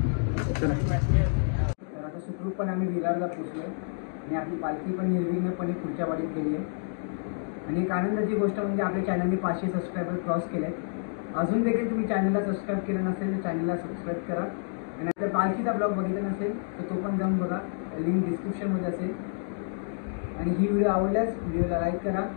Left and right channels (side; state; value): right; silent; digital silence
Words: तर आता सुखरूपपणे आम्ही विरारला पोचलो आणि आपली पालखी पण निर्विघ्नपणे पुढच्या वाडीत गेली आहे. आणि एक आनंदाची गोष्ट म्हणजे आपल्या चॅनलने 500 सबस्क्रायबर क्रॉस केले आहेत. अजून देखील तुम्ही चॅनलला सबस्क्राईब केलं नसेल तर चॅनलला सबस्क्राईब करा. आणि जर पालखीचा ब्लॉग बघितला नसेल तर तो पण जाऊन बघा, लिंक डिस्क्रिप्शनमध्ये असेल. आणि ही व्हिडिओ आवडल्यास व्हिडिओला लाईक करा